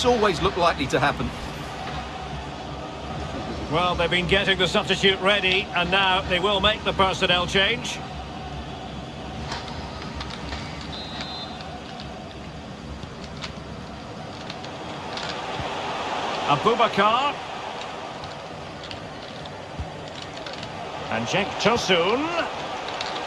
always looked likely to happen. Well, they've been getting the substitute ready, and now they will make the personnel change. Abubakar. And Cenk Tosun.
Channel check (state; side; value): identical; both; correlation 1.00